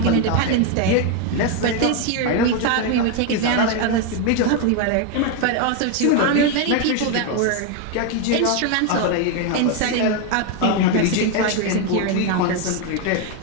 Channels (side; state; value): both; different; correlation 0.01